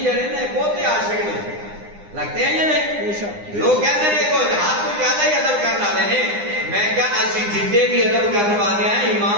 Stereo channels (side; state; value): left; late; 9.8 ms